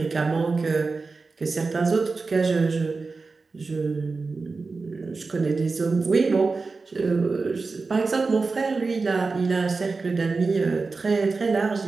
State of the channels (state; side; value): quieter; left; 4.1 dB